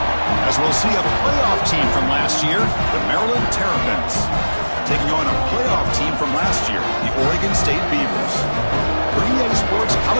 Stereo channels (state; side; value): inverted; both; correlation -1.00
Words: As we'll see a playoff team from last year, the Maryland Terrapins, taking on a playoff team from last year, the Oregon State Beavers. For EA Sports